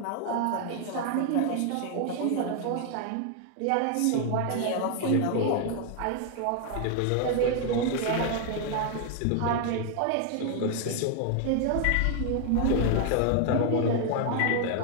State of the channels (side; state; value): both; different; correlation 0.00